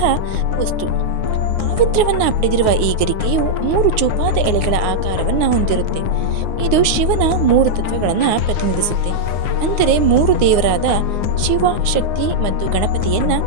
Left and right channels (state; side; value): late; left; 9.6 ms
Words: ವಸ್ತು. ಪಾವಿತ್ರ್ಯವನ್ನ ಪಡೆದಿರುವ ಈ ಗರಿಕೆಯು 3 ಚೂಪಾದ ಎಲೆಗಳ ಆಕಾರವನ್ನ ಹೊಂದಿರುತ್ತೆ. ಇದು ಶಿವನ 3 ತತ್ವಗಳನ್ನ ಪ್ರತಿನಿಧಿಸುತ್ತೆ. ಅಂದರೆ 3 ದೇವರಾದ ಶಿವ, ಶಕ್ತಿ ಮತ್ತು ಗಣಪತಿಯನ್ನ